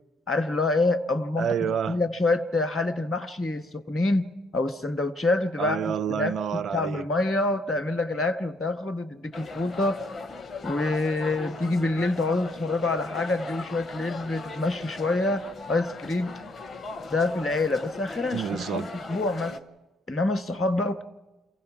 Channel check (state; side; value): normal; both; correlation 0.69